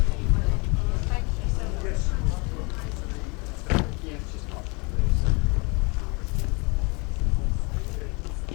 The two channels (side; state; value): right; quieter; 29.8 dB